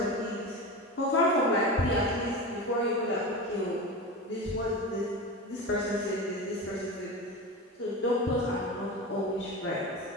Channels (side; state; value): both; normal; correlation 0.26